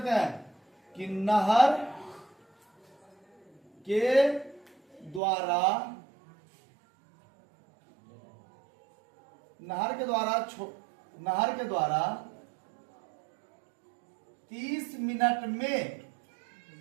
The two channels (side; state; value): left; drops out; at 5.2 s